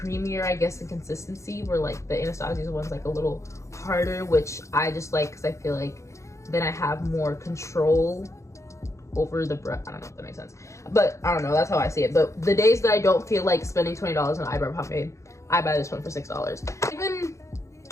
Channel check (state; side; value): late; right; 0.14 ms